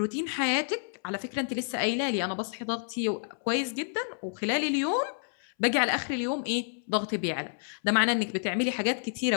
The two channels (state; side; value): silent; right; 58 dB below the other